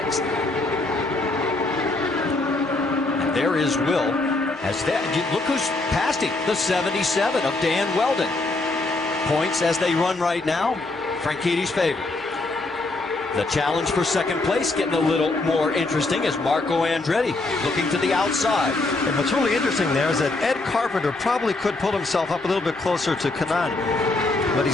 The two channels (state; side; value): quieter; right; 3.1 dB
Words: And there is Will. Look who's passed him, the 77 of Dan Weldon. Points as they run right now, Franchitti's favorite. The challenge for second place getting a little more interesting as Marco Andretti looking to the outside. And what's really interesting there is that Ed Carpenter probably could pull himself up a little bit closer to Kanaan, but